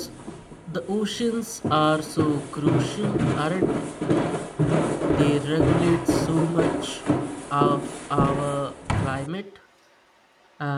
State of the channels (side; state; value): both; identical; correlation 1.00